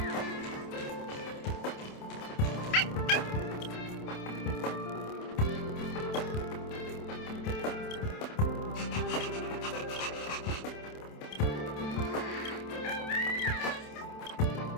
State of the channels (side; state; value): right; late; 27 ms